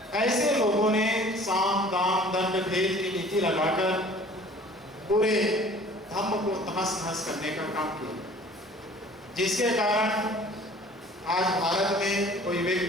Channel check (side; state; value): both; normal; correlation 0.49